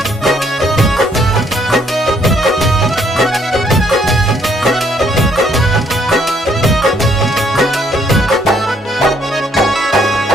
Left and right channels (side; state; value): both; normal; correlation 0.68